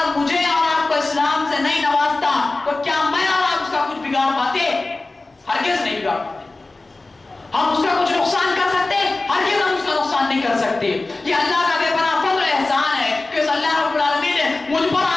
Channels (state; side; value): quieter; right; 3.2 dB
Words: مجھے اور آپ کو اسلام سے نہیں نوازتا تو کیا میں اور آپ اس کا کچھ بگاڑ پاتے؟ ہرگز نہیں بگاڑ پاتے. ہم اس کا کچھ نقصان کر سکتے؟ ہرگز ہم اس کا نقصان نہیں کر سکتے. یہ اللہ کا بے پناہ فضل و احسان ہے کہ اس اللہ رب العالمین نے مجھ پر